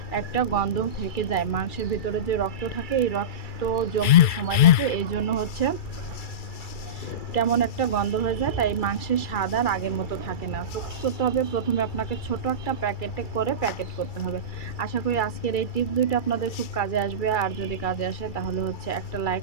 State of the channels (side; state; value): right; late; 2.3 ms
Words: একটা গন্ধ থেকে যায়। মাংসের ভিতরে যে রক্ত থাকে এই রক্ত জমতে সময় লাগে, এই জন্য কেমন একটা গন্ধ হয়ে যায়, তাই মাংসের স্বাদ আর আগের মতো থাকে না। তো কী করতে হবে, প্রথমে আপনাকে ছোট একটা প্যাকেটে করে প্যাকেট করতে হবে। আশা করি আজকের এই টিপস দুইটা আপনাদের খুব কাজে আসবে। আর যদি কাজে আসে তাহলে একটা লাইক